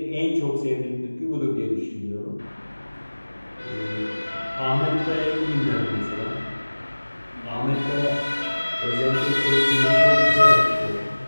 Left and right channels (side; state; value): both; inverted; correlation -1.00